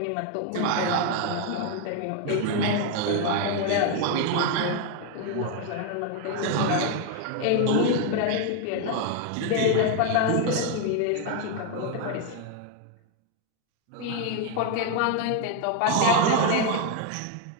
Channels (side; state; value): both; different; correlation 0.01